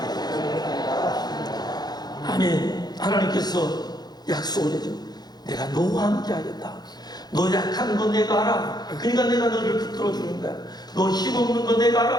아멘. 하나님께서 약속을 해줘. 내가 너와 함께 하겠다. 너 약한 거 내가 알아. 그러니까 내가 너를 붙들어 주는 거야. 너 힘없는 거 내가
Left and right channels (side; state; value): right; late; 0.20 ms